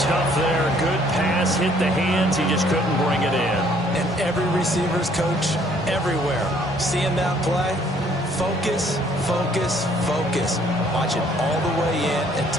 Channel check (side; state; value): both; normal; correlation 0.62